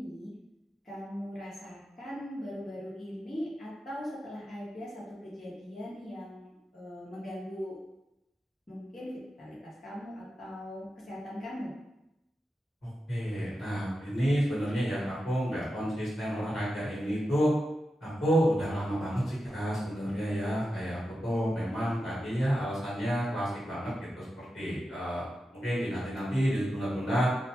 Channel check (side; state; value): both; normal; correlation 0.90